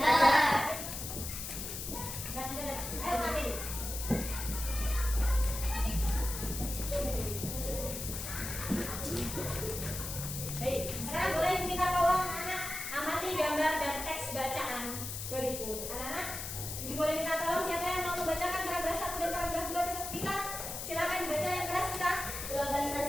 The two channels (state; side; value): noise; left; hiss, 6 dB below the sound